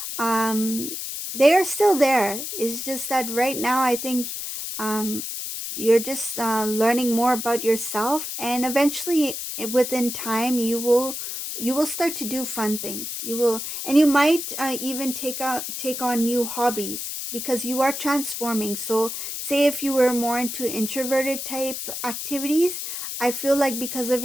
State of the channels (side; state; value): left; noise; hiss, 6 dB below the sound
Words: um they are still there. It's just that right now I think um you're just learning more about yourself, and eventually within time you will start to do fun things. You will, and you might even take on new hobbies, because you are transforming. So say if you were more into introverted type activities, I feel like because of